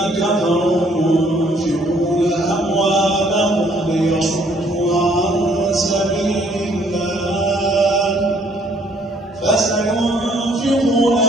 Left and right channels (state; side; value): normal; both; correlation 0.63